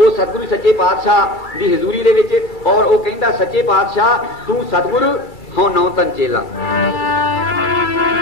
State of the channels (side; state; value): right; late; 2.3 ms